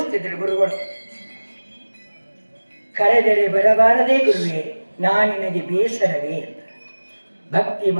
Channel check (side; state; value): both; inverted; correlation -1.00